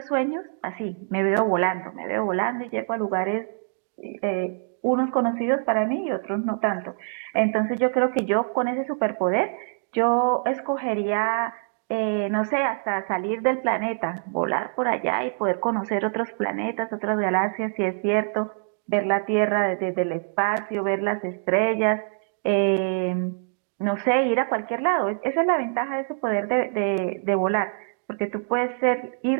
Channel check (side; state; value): left; silent; digital silence